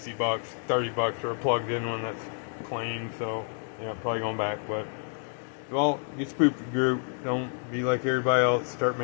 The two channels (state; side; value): silent; right; 59 dB below the other